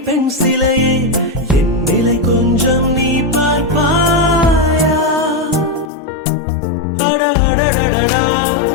பெண் சிலையே, என் நிலை கொஞ்சம் நீ பார்ப்பாயா? அடடடடடா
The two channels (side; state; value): right; drops out; at 5.9 s